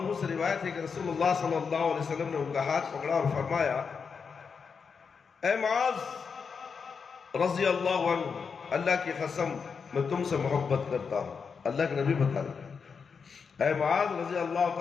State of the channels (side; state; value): right; quieter; 5.8 dB